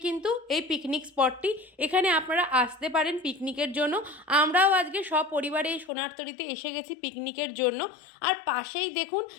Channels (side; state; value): right; drops out; at 5.9 s